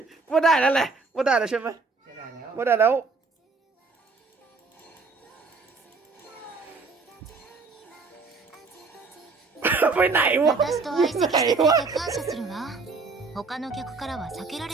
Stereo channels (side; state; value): left; quieter; 4.2 dB